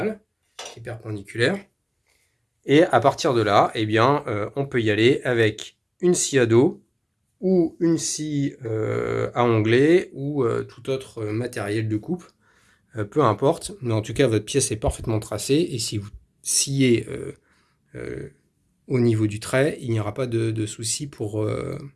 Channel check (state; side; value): identical; both; correlation 1.00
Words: qui est perpendiculaire. Et à partir de là, eh bien, on peut y aller avec une scie à dos ou une scie à onglet ou tout autre matériel de coupe, peu importe. Mais en tout cas, votre pièce est parfaitement tracée et si vous sciez au niveau du trait, il n'y aura pas de souci pour